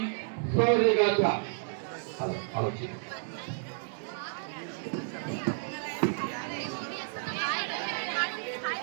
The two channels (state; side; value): silent; left; digital silence